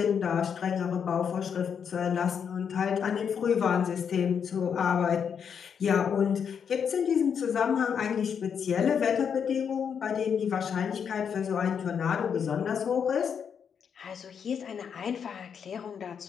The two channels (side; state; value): right; quieter; 7.3 dB